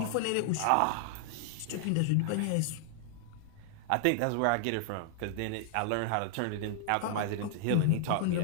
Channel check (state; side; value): different; both; correlation -0.01